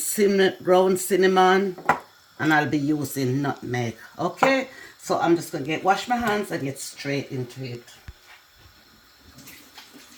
ground cinnamon. And I'll be using nutmeg. Okay? So I'm just gonna wash my hands and get straight into it.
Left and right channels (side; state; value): both; identical; correlation 1.00